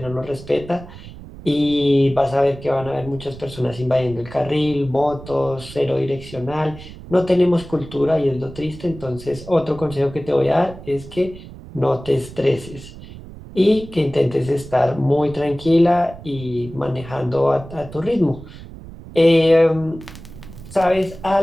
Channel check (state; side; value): noise; right; rumble, 15 dB below the sound